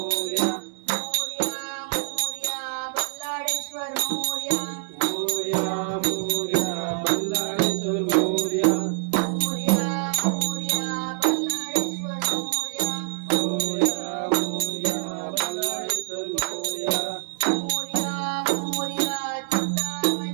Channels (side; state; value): left; silent; digital silence